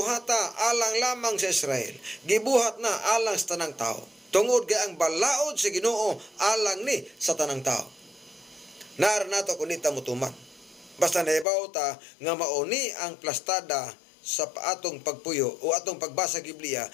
alang lamang sa Israel, gibuhat na alang sa tanang tao, tungod kay ang balaod sa Ginoo alang ni sa tanang tao. Naar nato kunita mutuman, basta nahibaw ta nga mauni ang plastada sa atong pagpuyo o atong pagbasa Biblia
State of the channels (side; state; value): right; drops out; at 11.5 s